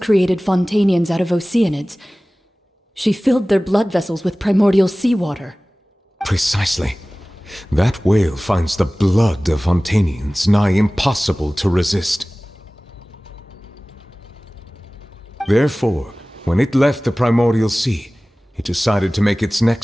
created Fontanians out of Oceanids, she filled their blood vessels with primordial seawater. Precisely. That wail finds the blood of Fontanians nigh impossible to resist. Therefore, when it left the Primordial Sea, it decided to make its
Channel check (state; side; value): normal; both; correlation 0.98